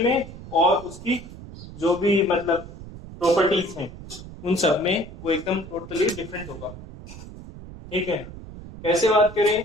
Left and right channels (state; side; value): noise; right; rumble, 14 dB below the sound